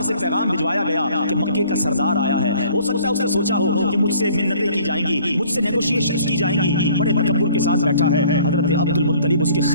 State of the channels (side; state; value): both; inverted; correlation -0.55